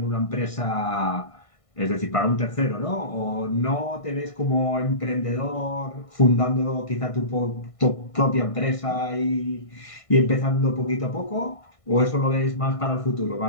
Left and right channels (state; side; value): late; right; 1.6 ms